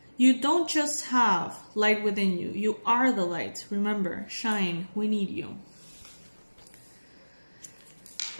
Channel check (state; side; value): inverted; both; correlation -1.00